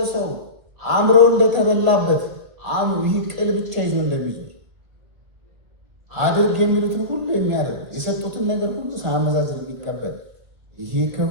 ሰው አእምሮ እንደተበላበት ይህ ቅል ብቻ ይዞ እንደሚዞር አድርግ የሚሉትን ሁሉ የሚያደርግ የሰጡትን ነገር ሁሉ ሳያመዛዝን የሚቀበል ይሄ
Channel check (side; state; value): left; late; 2.1 ms